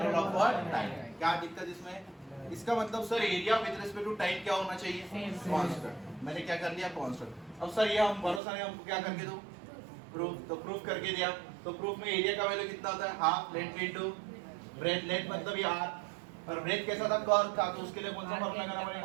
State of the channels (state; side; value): drops out; left; at 8.4 s